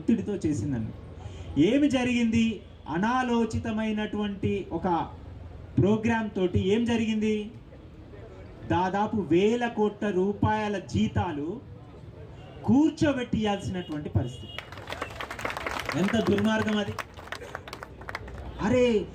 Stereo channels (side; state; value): both; identical; correlation 1.00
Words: చేసిందని. ఏమి జరిగింది? అనాలోచితమైనటువంటి ఒక ప్రోగ్రామ్ తోటి ఏం జరిగింది? దాదాపు 1000 కోట్ల రూపాయల జీతాలు కూర్చోబెట్టి ఇవ్వాల్సినటువంటి పరిస్థితి. ఎంత దుర్మార్గం అది! అరే